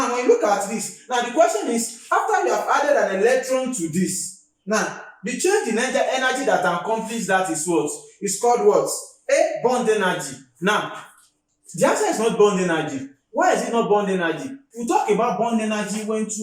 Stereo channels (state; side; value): identical; both; correlation 1.00